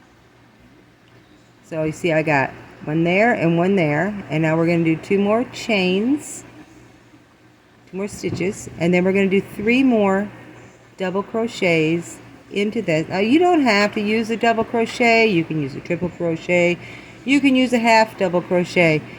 So you see I got one there and one there, and now we're going to do 2 more chains, 2 more stitches, and then we're going to do 3 more double crochets into this. Now you don't have to use a double crochet. You can use a triple crochet. You can use a half double crochet.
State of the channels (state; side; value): identical; both; correlation 1.00